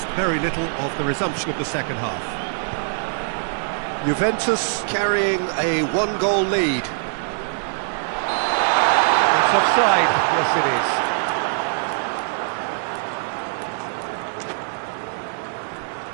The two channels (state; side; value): silent; left; digital silence